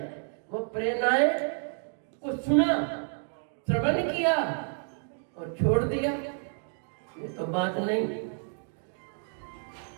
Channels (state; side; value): silent; left; 58 dB below the other